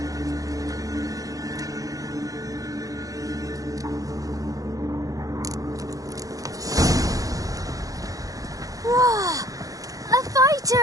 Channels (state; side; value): late; left; 0.17 ms